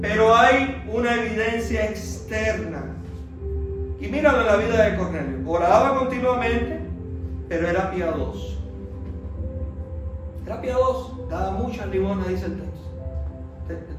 hay una evidencia externa. Y míralo en la vida de Cornelio. Oraba continuamente, pero era piadoso. Era piadoso, daba muchas limosnas, dice el texto. El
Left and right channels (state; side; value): identical; both; correlation 1.00